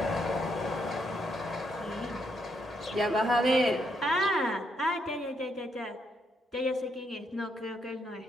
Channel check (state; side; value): normal; both; correlation 0.76